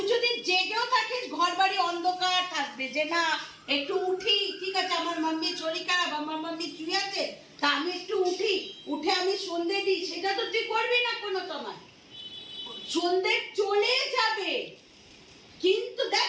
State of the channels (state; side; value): identical; both; correlation 1.00